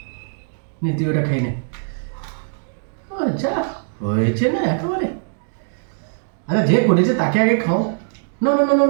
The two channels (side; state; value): left; silent; digital silence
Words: নে, তুই ওটা খাই নে। যা হয়েছে না একেবারে। আচ্ছা যে করেছে তাকে আগে খাও। না না না না